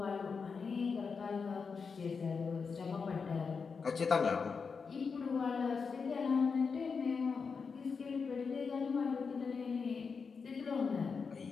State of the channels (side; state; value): right; quieter; 5.3 dB